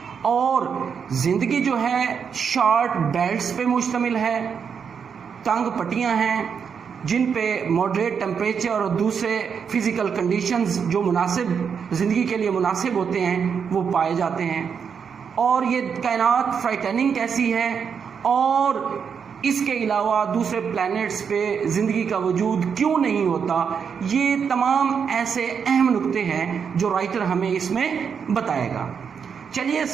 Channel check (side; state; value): left; quieter; 6.7 dB